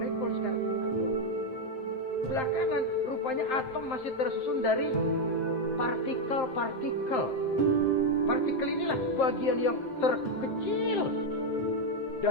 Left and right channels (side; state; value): right; late; 7.6 ms